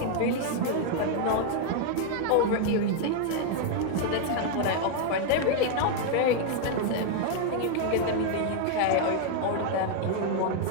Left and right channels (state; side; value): different; both; correlation 0.00